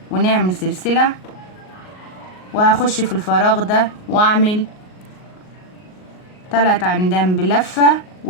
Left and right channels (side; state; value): right; late; 38 ms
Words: ونعمل سلسلة وهخش في الفراغ ده واعمل 3 عمدان بلفة،